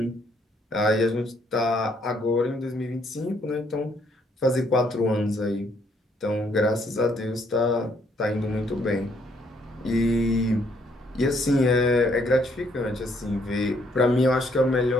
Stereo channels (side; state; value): both; normal; correlation 0.69